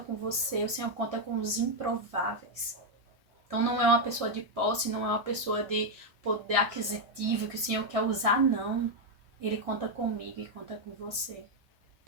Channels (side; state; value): left; late; 1.6 ms